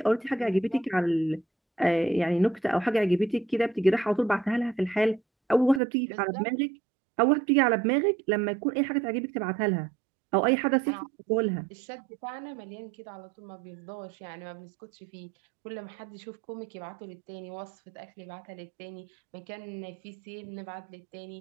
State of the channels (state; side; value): drops out; left; at 5.8 s